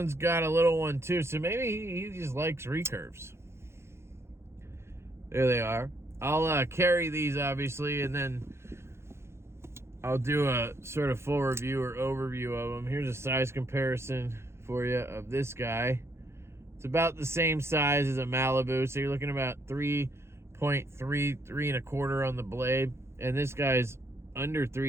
got a little one too, so maybe he just likes recurves. There they are. I'll carry these obviously, and then I'll do a sort of full review or overview of them. Here's a size comparison for you of this guy. It's about the same size as a Malibu, so you're looking about 3.3, 3.25 on the blade, and this guy's under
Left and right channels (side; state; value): left; late; 0.13 ms